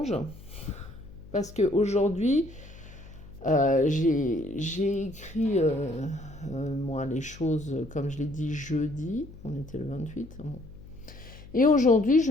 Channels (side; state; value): left; noise; hum, 18 dB below the sound